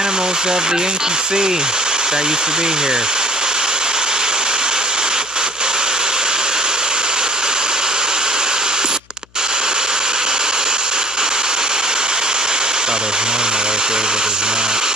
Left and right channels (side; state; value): left; noise; hum, 30 dB below the sound